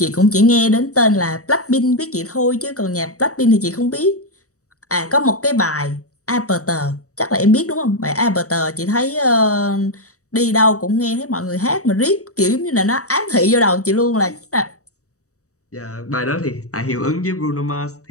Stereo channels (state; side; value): late; right; 0.65 ms